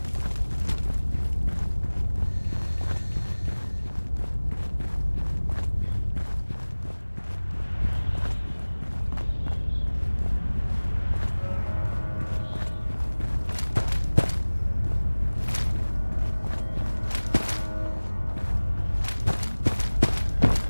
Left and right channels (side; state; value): both; inverted; correlation -1.00